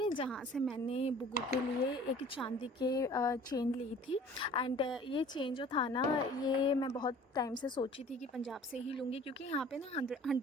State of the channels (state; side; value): normal; both; correlation 0.48